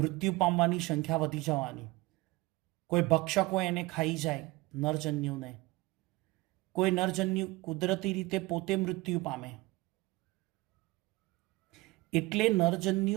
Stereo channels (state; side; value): quieter; left; 21.7 dB